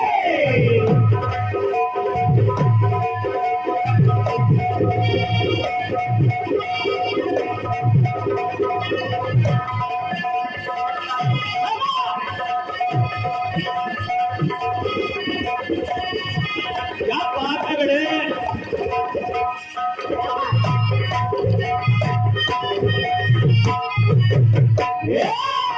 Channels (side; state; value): both; identical; correlation 1.00